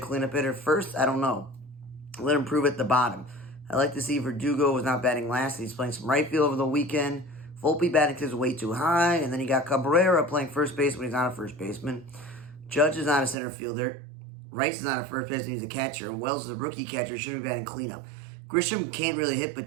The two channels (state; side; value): drops out; left; at 13.4 s